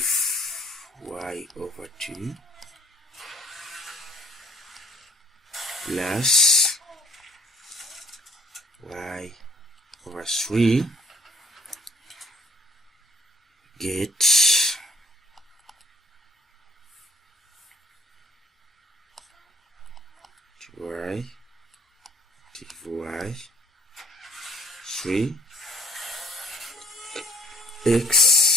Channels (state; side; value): normal; both; correlation 0.58